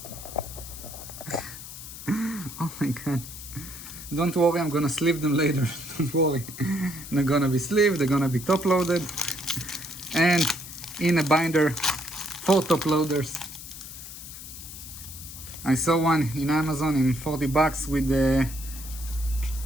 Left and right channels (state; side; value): noise; left; hiss, 12 dB below the sound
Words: Oh my god. Don't worry, I'm gonna sleeve them later. Don't worry. They're gonna be sleeved, they're gonna be top loaded. And in a binder for top loaders. I saw one in Amazon in 40 bucks with the